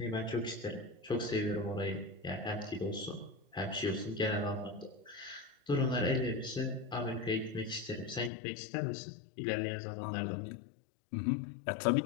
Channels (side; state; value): right; drops out; at 8.3 s